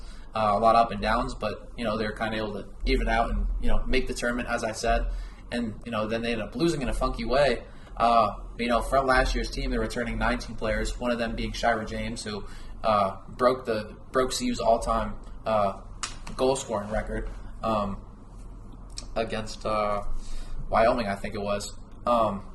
a lot of up and downs, but they were kind of able to even out and make the tournament, as I said. And then they ended up losing in a funky way. From last year's team, they're returning 19 players. One of them being Shira James, who broke CU's all-time goal scoring record against Wyoming, I think it was,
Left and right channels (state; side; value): identical; both; correlation 1.00